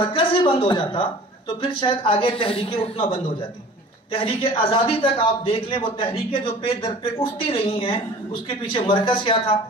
ہی بند ہو جاتا تو پھر شاید آگے تحریکیں اٹھنا بند ہو جاتی. تحریک آزادی تک آپ دیکھ لیں، وہ تحریکیں جو پہ در پہ اٹھتی رہی ہیں، اس کے پیچھے مرکز کیا تھا؟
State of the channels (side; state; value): both; normal; correlation 0.45